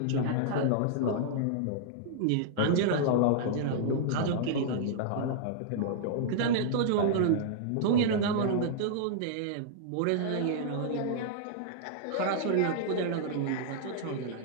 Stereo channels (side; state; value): both; different; correlation -0.02